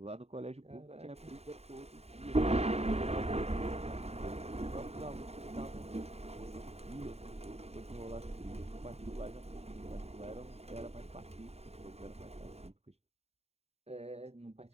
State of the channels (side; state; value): left; late; 0.30 ms